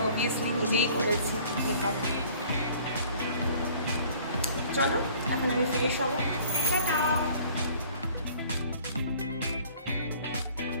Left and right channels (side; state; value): both; inverted; correlation -0.52